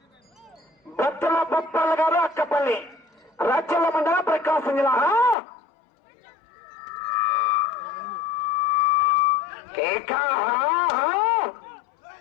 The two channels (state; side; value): drops out; right; at 5.4 s